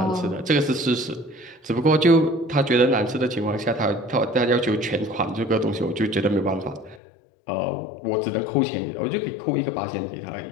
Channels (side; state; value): right; drops out; at 7.0 s